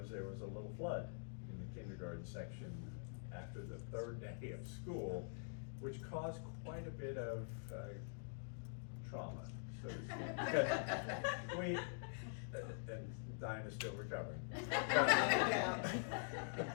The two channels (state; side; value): silent; right; digital silence